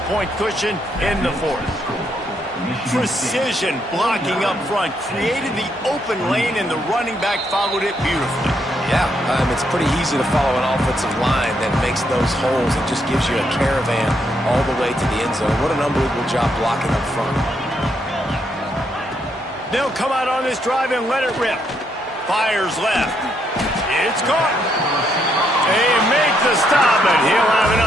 cushion in the fourth. Precision blocking up front created the open lane, and the running back followed it beautifully. Yeah, it's pretty easy to follow an offensive line that makes those holes and just gives you a caravan all the way to the end zone. What an unbelievable job blocking up front. They'll come out on this drive and let it rip. Fires left. It's caught. They make the stop, but he'll have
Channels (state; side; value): normal; both; correlation 0.76